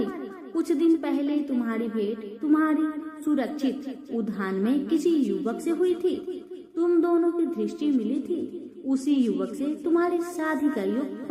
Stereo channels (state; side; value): identical; both; correlation 1.00